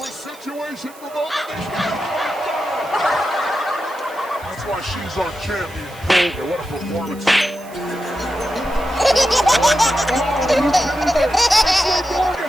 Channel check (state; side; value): noise; right; hiss, 22 dB below the sound